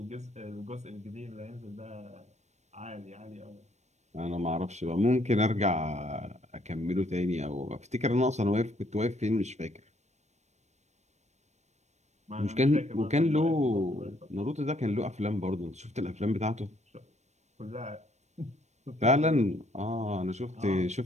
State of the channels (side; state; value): left; late; 0.33 ms